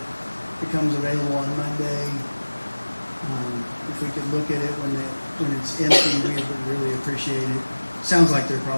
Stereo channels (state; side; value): inverted; both; correlation -1.00